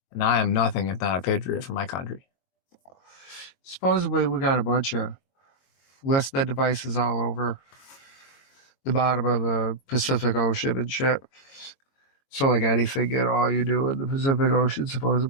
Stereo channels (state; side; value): late; right; 22 ms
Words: And I am nothing if not a patriot for my country. Supposedly, we got a bunch of listed devices all over the bottom of the Pacific Ocean and shit. So, like anything at all you do in the Pacific Ocean,